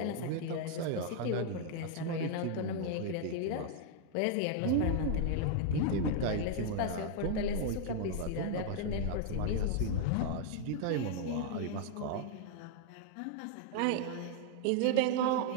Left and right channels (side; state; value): both; different; correlation -0.01